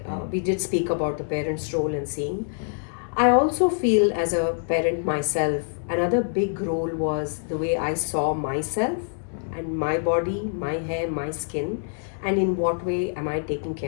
We did speak about the parents' role in seeing. I also feel, as a parent myself, another big role was the way I saw myself and my body, my hair, my skin, and in what way am I taking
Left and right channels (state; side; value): silent; right; 62 dB below the other